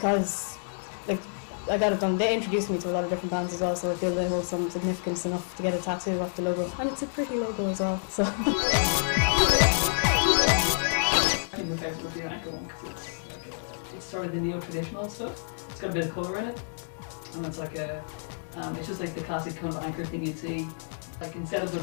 like I got it done, they introduced me to a lot of different bands as well, so I feel they hold some significance enough to get a tattoo off the logo, and it's a pretty logo as well, so. My favourite would be an ankle one, because it's sort of the neo-traditional stuff. It's got a bit of colour in it, and it's like a, it's just like the classic kind of anchor thing you'd see, like instead of the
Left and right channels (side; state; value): right; silent; digital silence